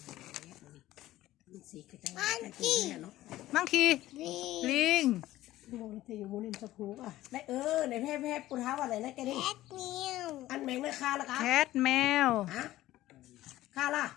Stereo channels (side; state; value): right; quieter; 15.4 dB